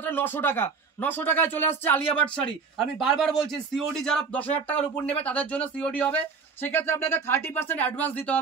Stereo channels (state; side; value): quieter; left; 5.2 dB